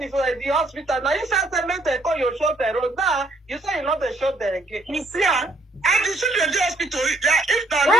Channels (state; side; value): normal; both; correlation 0.69